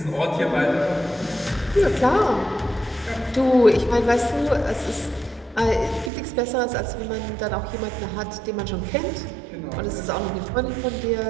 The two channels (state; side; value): drops out; left; at 6.1 s